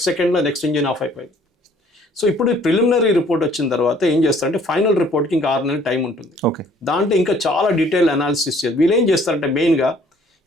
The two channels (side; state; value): both; normal; correlation 0.58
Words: సెకండ్లో నెక్స్ట్ ఇంజిన్ ఆఫ్ అయిపోయింది. సో ఇప్పుడు ప్రిలిమినరీ రిపోర్ట్ వచ్చిన తర్వాత ఏం చేస్తారంటే ఫైనల్ రిపోర్ట్కి ఇంకా 6 నెలల టైం ఉంటుంది. ఓకే, దాంట్లో ఇంకా చాలా డీటెయిల్ అనాలిసిస్ చేస్తారు. వీళ్ళు ఏం చేస్తారంటే మెయిన్గా